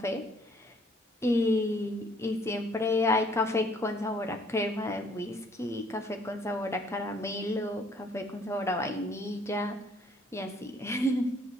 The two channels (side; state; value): both; normal; correlation 0.61